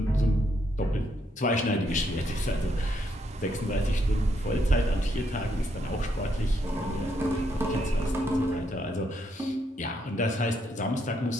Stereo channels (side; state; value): both; normal; correlation 0.76